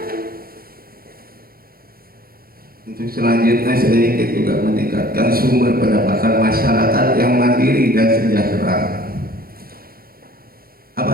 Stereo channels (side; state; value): left; late; 0.43 ms